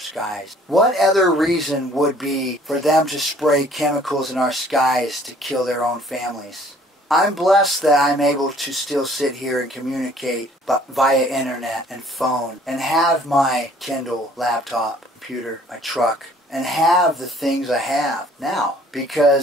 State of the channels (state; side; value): normal; both; correlation 0.56